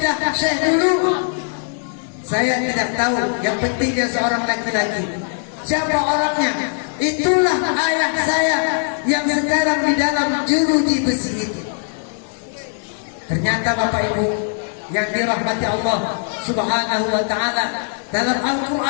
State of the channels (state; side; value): silent; right; 65 dB below the other